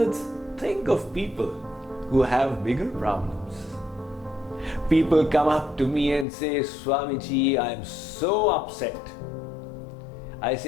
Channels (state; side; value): drops out; right; at 6.2 s